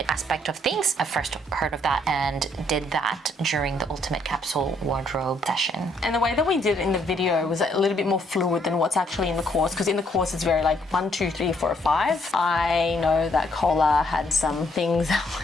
aspect of things, I first heard of that and did that during the Ultimate Capsule Wardrobe session. And the way that we did it in the video was a little bit more fluid than what's actually in the course, because in the course it's very like 1, 2, 3, 4, 5. I know that Cola had some things,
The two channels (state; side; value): normal; both; correlation 0.69